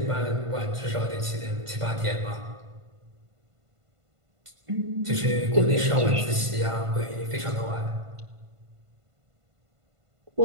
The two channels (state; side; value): late; left; 1.5 ms